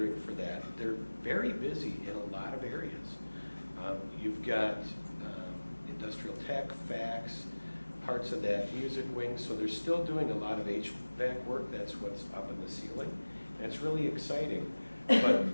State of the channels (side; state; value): both; inverted; correlation -1.00